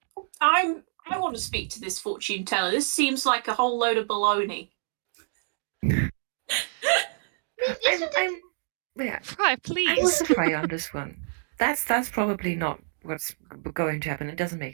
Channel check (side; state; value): left; silent; digital silence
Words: I want to speak to this fortune teller. This seems like a whole load of baloney. Fry, please. I'm with Fry on this one. That's probably not what's going to happen. It doesn't